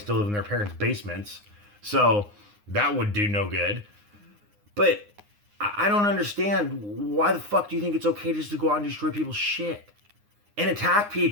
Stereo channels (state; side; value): late; left; 9.7 ms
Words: live in their parents' basements. So that would do no good. But I don't understand. Why the fuck do you think it's okay just to go out and destroy people's shit? And attack